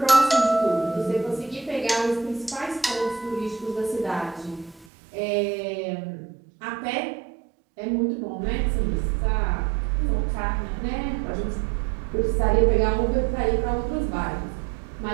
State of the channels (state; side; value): drops out; left; at 4.9 s